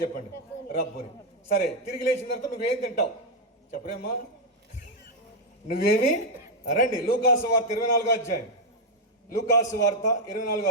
చెప్పండి, రబ్బుని. సరే, తిరిగి లేచిన తర్వాత నువ్వేం తింటావు చెప్పరేమ్మా? నువ్వేమి? రండి, లూకాసు వార్త 24వ అధ్యాయం. లూకాసు వార్త 24వ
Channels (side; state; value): both; normal; correlation 0.01